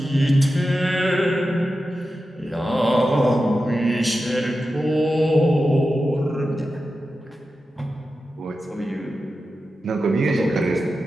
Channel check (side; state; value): both; normal; correlation 0.92